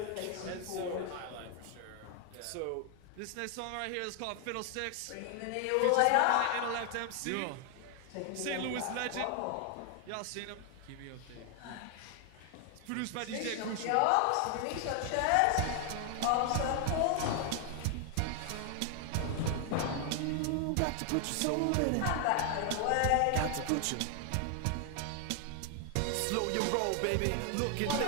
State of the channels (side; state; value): both; different; correlation 0.00